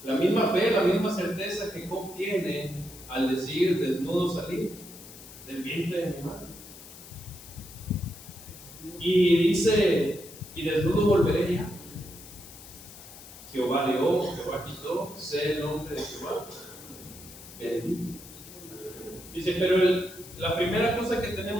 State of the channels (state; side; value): noise; left; hiss, 17 dB below the sound